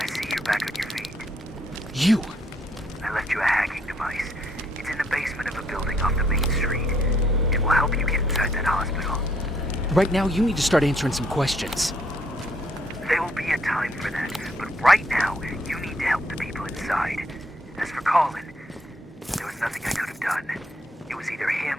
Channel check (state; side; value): normal; both; correlation 0.69